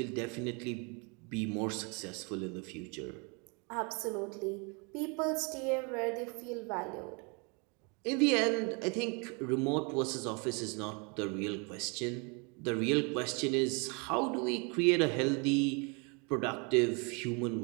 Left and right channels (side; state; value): left; quieter; 33.0 dB